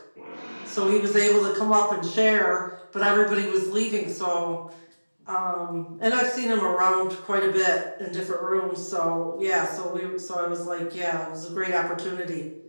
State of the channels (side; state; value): both; inverted; correlation -1.00